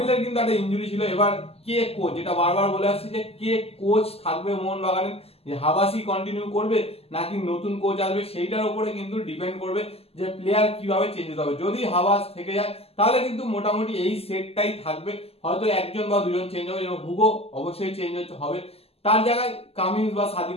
কিন্তু একটা ইনজুরি ছিল। এবার কে কোচ, যেটা বারবার বলে আসছি, যে কে কোচ থাকবে মোহনবাগানের, যে হাবাসি কন্টিনিউ করবে নাকি নতুন কোচ আসবে, সেইটার উপরে কিন্তু ডিপেন্ড করবে যে প্লেয়ার কিভাবে চেঞ্জ হতে হবে। যদি হাবাস থেকে যায় তাহলে কিন্তু মোটামুটি এই সেটটাই থাকবে, হয়তো একজন বা দুজন চেঞ্জ হবে। এবং হুগো অবশ্যই চেঞ্জ হবে, তার জায়গায় কামিন্স বা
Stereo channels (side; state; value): right; late; 0.29 ms